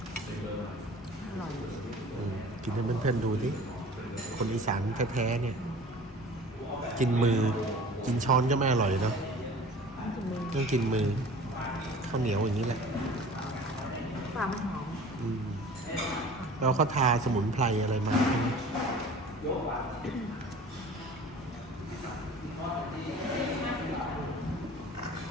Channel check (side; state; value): both; normal; correlation 0.43